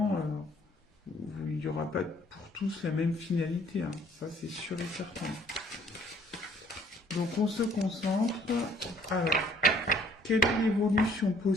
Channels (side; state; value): both; normal; correlation 0.60